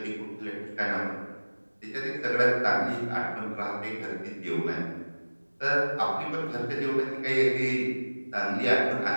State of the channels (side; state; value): both; inverted; correlation -1.00